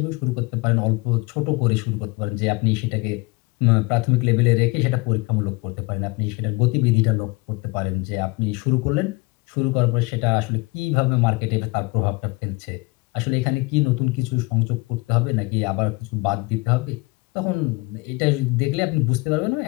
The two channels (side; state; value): right; quieter; 25.5 dB